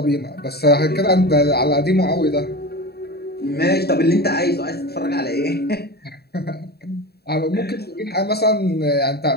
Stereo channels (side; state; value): right; late; 0.47 ms